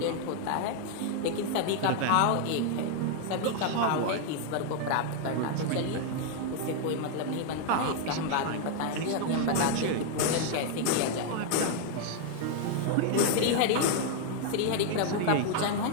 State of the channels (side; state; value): both; different; correlation 0.00